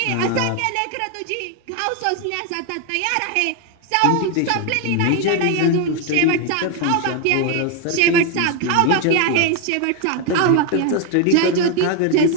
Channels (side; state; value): both; different; correlation 0.01